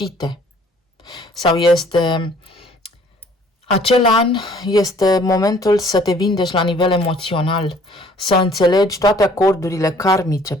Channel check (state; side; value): normal; both; correlation 0.57